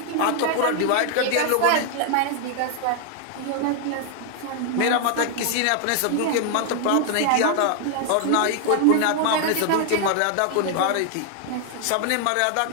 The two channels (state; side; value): different; both; correlation 0.00